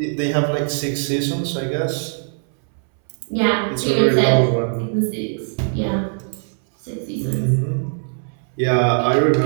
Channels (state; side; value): silent; left; 65 dB below the other